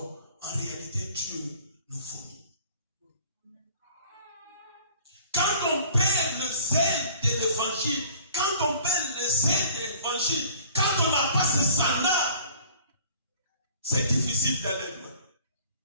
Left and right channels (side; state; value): both; inverted; correlation -0.50